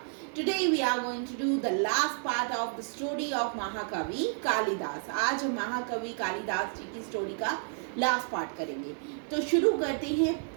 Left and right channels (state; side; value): silent; left; 57 dB below the other